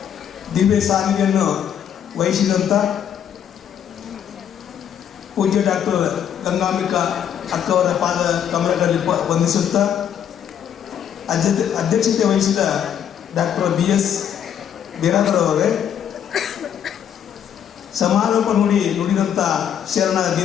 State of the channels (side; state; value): right; quieter; 9.1 dB